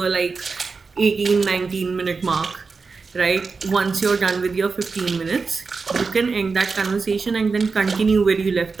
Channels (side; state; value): left; quieter; 4.6 dB